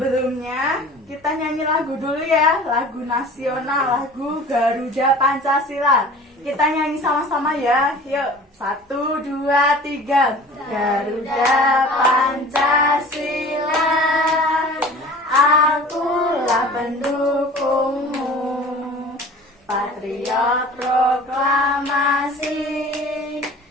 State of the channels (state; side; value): normal; both; correlation 0.43